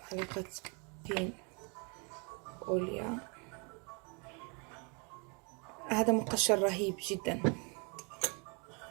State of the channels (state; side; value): quieter; left; 34.1 dB